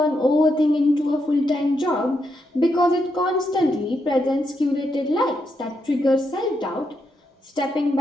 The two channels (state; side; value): normal; both; correlation 0.81